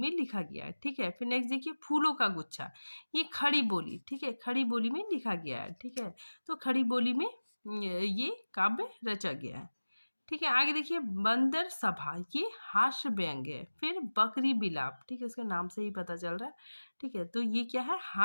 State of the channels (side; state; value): both; inverted; correlation -1.00